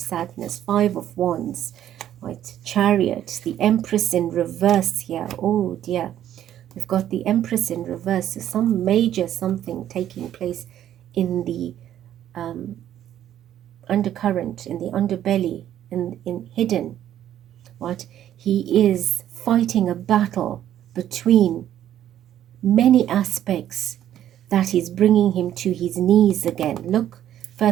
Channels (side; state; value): left; quieter; 11.4 dB